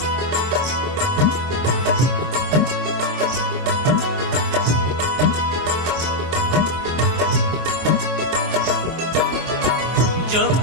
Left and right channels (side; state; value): left; late; 23 ms